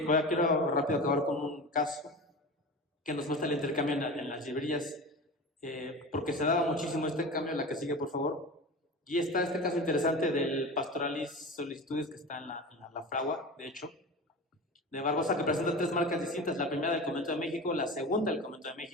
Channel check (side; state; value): both; normal; correlation 0.30